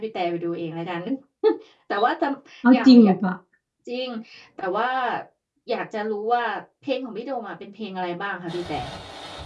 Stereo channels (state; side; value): identical; both; correlation 1.00